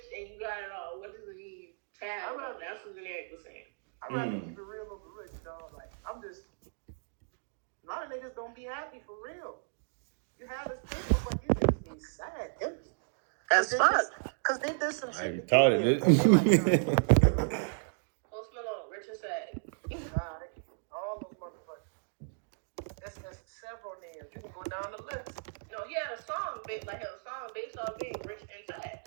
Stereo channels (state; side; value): silent; left; digital silence